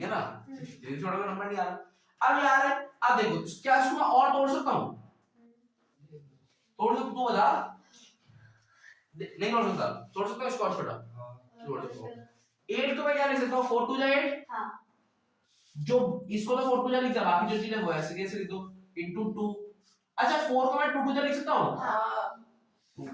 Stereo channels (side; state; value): both; identical; correlation 1.00